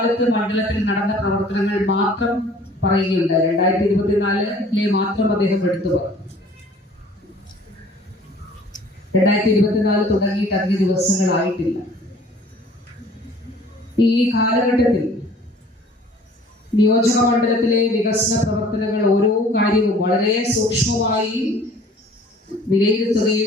മണ്ഡലത്തിൽ നടന്ന പ്രവർത്തനങ്ങൾ മാത്രം പറയുകയുണ്ട്. 2024 മാത്രം അദ്ദേഹം എടുത്തു പറഞ്ഞു. 2024 തുടങ്ങിയിട്ട് അധിക ദിവസങ്ങളായിട്ടില്ല. ഈ കാലഘട്ടത്തിൽ നിയോജക മണ്ഡലത്തിലെ വികസന പ്രവർത്തനങ്ങൾ ഓരോ കാര്യവും വളരെ സൂക്ഷ്മമായി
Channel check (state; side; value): normal; both; correlation 0.52